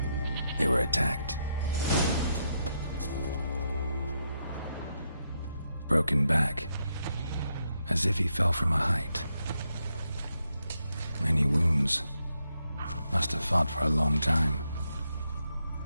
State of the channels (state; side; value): inverted; both; correlation -0.81